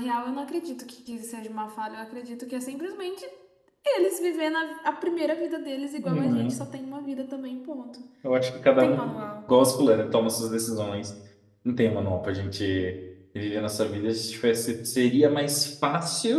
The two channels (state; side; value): identical; both; correlation 1.00